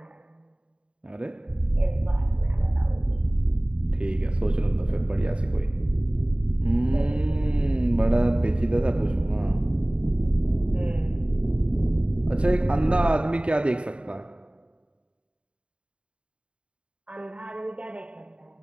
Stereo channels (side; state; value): left; late; 0.056 ms